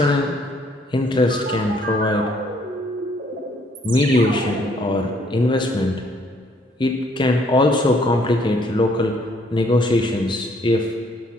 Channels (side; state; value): both; normal; correlation 0.65